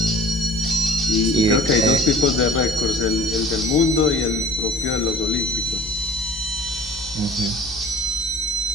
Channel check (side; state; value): both; normal; correlation 0.47